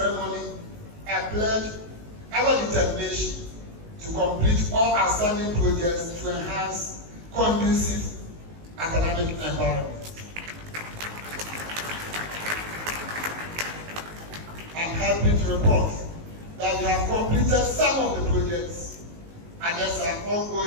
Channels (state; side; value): late; left; 19 ms